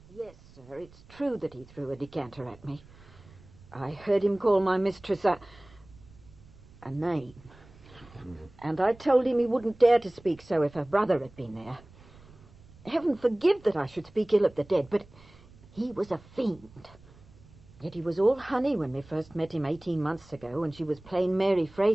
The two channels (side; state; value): right; noise; rumble, 24 dB below the sound